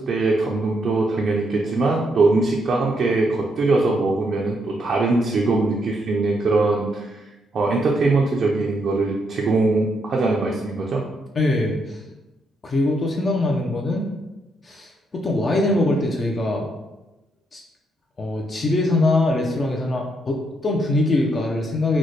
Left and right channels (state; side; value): normal; both; correlation 0.77